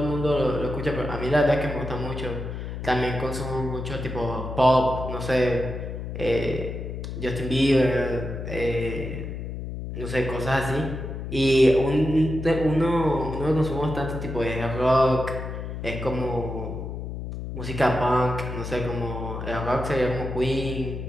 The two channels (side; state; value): left; noise; hum, 7 dB below the sound